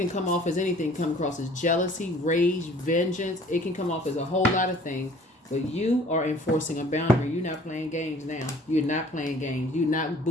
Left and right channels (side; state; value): both; normal; correlation 0.52